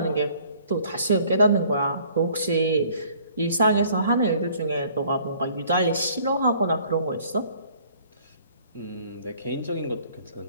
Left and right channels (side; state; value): both; inverted; correlation -0.57